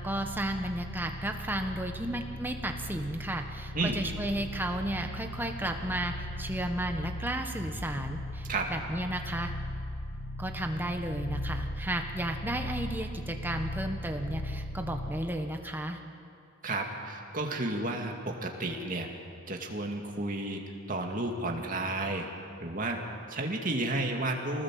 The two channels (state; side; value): normal; both; correlation 0.58